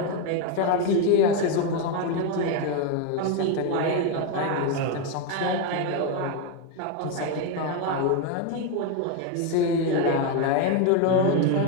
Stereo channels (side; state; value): both; different; correlation 0.02